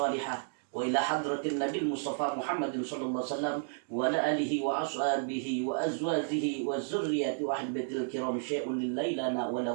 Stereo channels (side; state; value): left; silent; digital silence